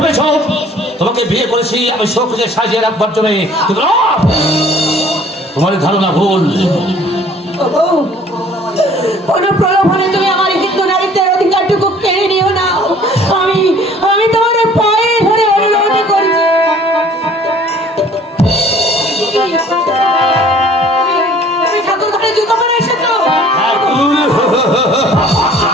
তোমাকে বিয়ে করেছি আমি শোককে সাজিয়ে রাখবার জন্য, তোমার ধারণা ভুল। কোনো প্রলোভনে তুমি আমার হিন্দু নারীত্বের অধিকারটুকু কেড়ে নিও না। আমি তোমার পায়ে ধরে অনুরোধ করছি, তুমি ঠাকুর ঘরে জুতো পরে এসেছো।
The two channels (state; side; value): normal; both; correlation 0.53